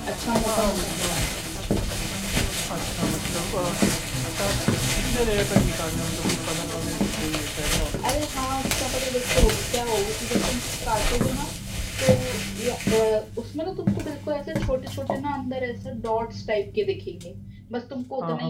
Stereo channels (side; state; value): both; identical; correlation 1.00